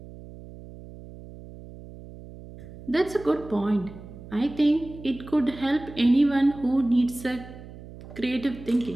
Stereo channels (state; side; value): noise; right; hum, 16 dB below the sound